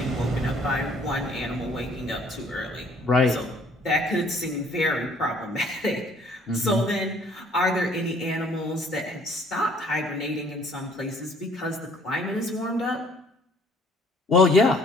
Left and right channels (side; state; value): both; normal; correlation 0.58